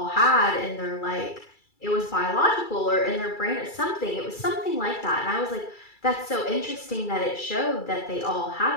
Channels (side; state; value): right; late; 2.3 ms